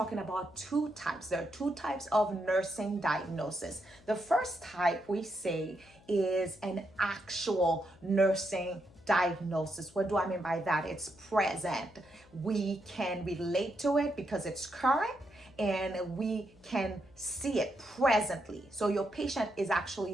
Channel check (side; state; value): left; noise; hum, 26 dB below the sound